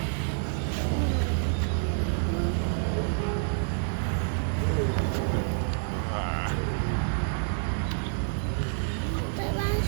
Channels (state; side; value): silent; left; digital silence